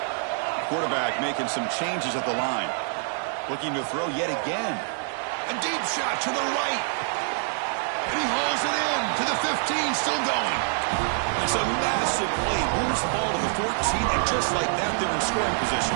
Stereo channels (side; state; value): left; silent; 61 dB below the other